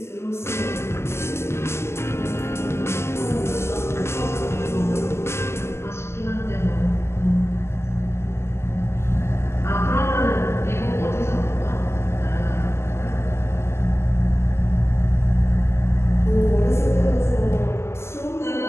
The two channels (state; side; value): late; right; 0.13 ms